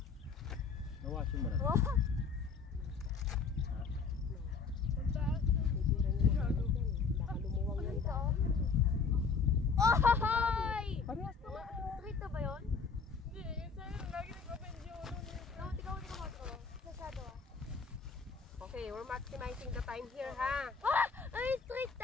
Nawasin mo na. Baka lumuwang yan dahil. Ohoy! Parehas naman. Street na ba yun? Hindi, yun sa'yo. Lagi nag-open yun. Ikaw mo. Sasado ah. Okay, we're maximizing the time here, ha? Ah! Ay, street!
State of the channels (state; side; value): quieter; right; 5.3 dB